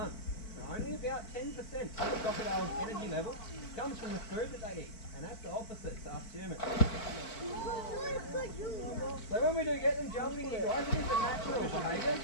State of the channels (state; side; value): late; right; 4.5 ms